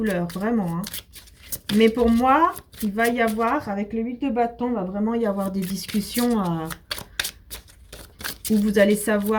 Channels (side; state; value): both; identical; correlation 1.00